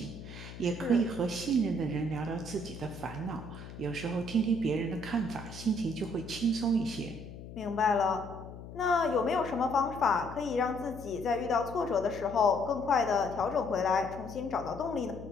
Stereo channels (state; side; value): noise; left; hum, 13 dB below the sound